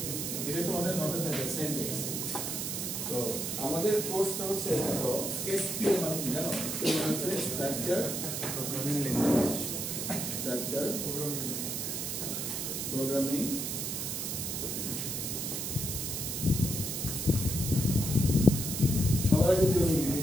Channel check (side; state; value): right; noise; hiss, 3 dB below the sound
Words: এটা তোমাদের নোটে থাকে সিনট্যাক্স তো আমাদের কোর্সটা হচ্ছে দেখো এসপিএল মানে কি জানো এসপিএল মানে হচ্ছে structure programming language structure programming সবার আগে জরুরি